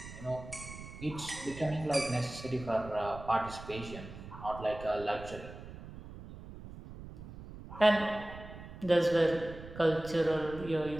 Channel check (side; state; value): right; noise; rumble, 13 dB below the sound